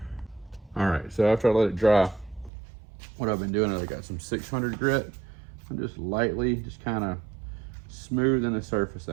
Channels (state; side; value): drops out; left; at 2.5 s